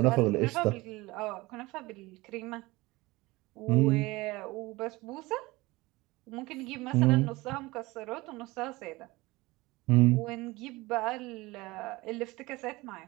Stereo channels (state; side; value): quieter; left; 21.4 dB